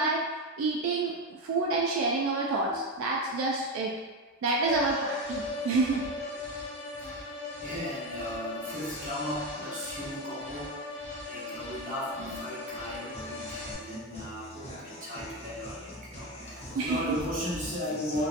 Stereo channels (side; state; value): both; normal; correlation 0.15